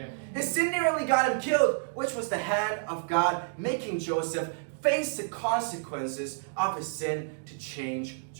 His sin nearly got him killed, which was the hand of God making Joseph face the consequences of his sin to change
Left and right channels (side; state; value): left; silent; digital silence